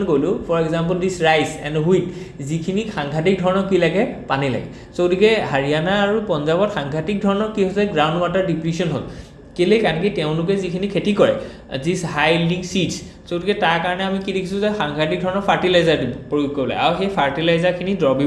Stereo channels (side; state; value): both; identical; correlation 1.00